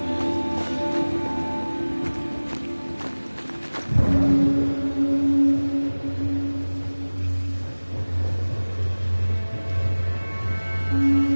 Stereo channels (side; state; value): both; inverted; correlation -1.00